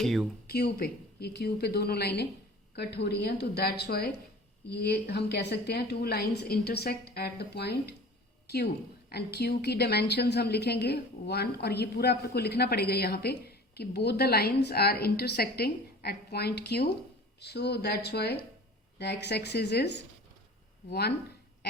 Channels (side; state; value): both; normal; correlation 0.42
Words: है, Q पे, ये Q पे दोनों लाइनें कट हो रही हैं। तो दैट्स वाई ये हम कह सकते हैं 2 lines intersect at the point Q, and Q की डायमेंशंस हम लिखेंगे 1, और ये पूरा आपको लिखना पड़ेगा यहाँ पे कि both the lines are intersecting at point Q, so that's why the x axis is 1,